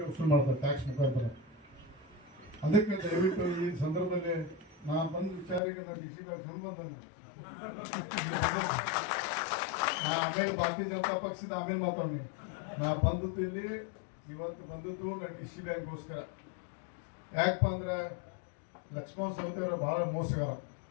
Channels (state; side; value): drops out; right; at 5.6 s